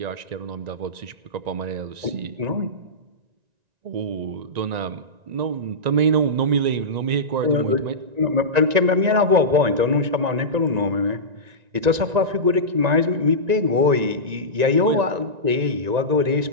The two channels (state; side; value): late; left; 1.9 ms